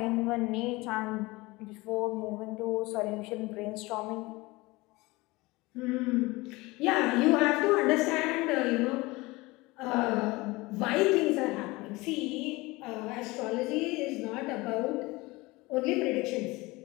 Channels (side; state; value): right; quieter; 22.2 dB